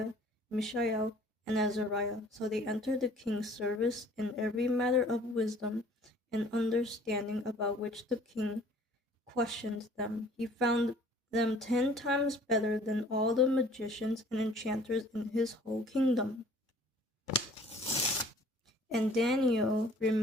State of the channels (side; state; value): both; normal; correlation 0.53